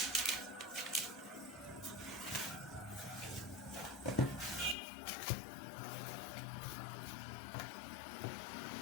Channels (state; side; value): drops out; right; at 4.8 s